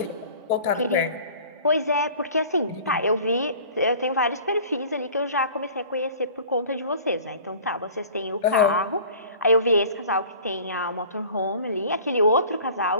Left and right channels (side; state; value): both; inverted; correlation -0.46